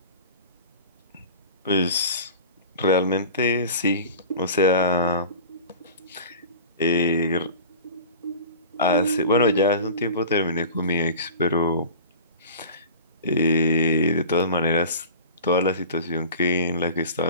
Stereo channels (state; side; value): inverted; both; correlation -0.38